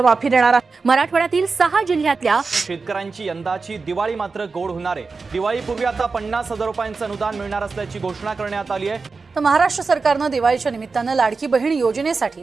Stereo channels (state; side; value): quieter; left; 4.4 dB